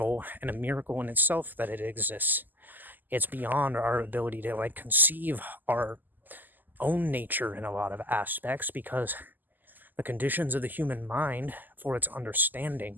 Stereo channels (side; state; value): left; late; 0.087 ms